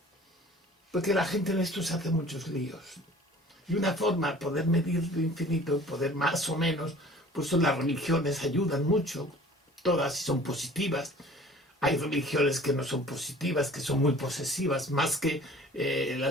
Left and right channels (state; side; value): normal; both; correlation 0.48